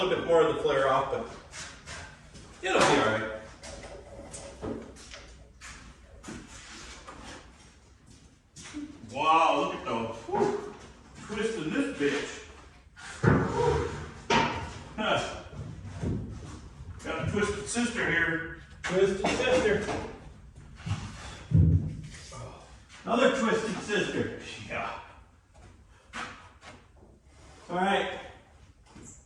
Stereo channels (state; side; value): identical; both; correlation 1.00